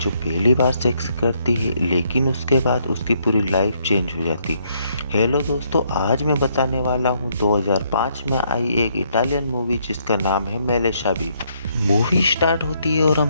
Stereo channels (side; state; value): both; inverted; correlation -0.72